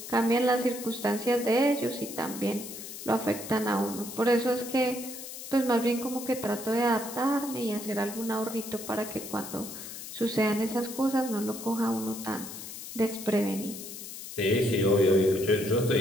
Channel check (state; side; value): noise; left; hiss, 11 dB below the sound